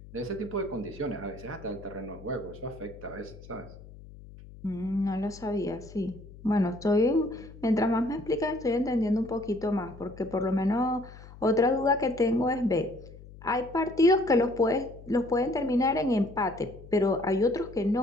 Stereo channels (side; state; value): left; noise; hum, 18 dB below the sound